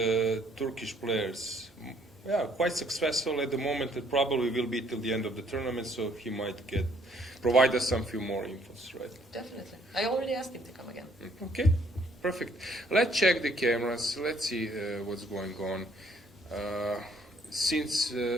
Turkish players are quite successful at the moment. It probably will be till the end of the tournament, so he might provide us some few more infos, right? Definitely. I already asked him to come again. Okay, perfect. Let's check the cameras. Let's see what's going on. Since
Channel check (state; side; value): normal; both; correlation 0.64